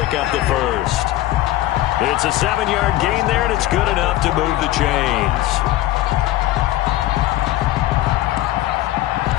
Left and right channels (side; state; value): right; quieter; 15.2 dB